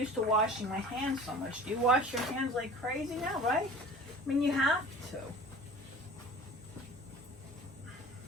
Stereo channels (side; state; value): both; normal; correlation 0.41